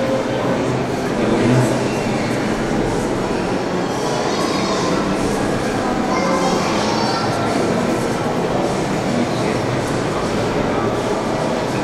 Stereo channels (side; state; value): both; identical; correlation 1.00